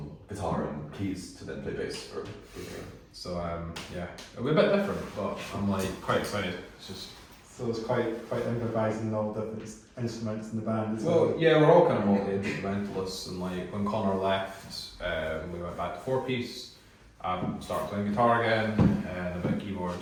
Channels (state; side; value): identical; both; correlation 1.00